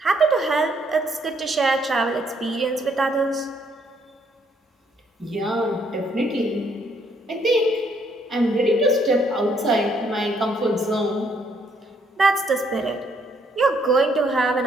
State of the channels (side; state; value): both; normal; correlation 0.69